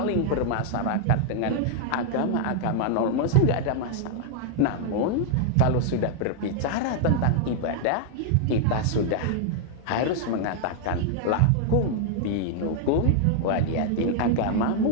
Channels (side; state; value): both; different; correlation 0.00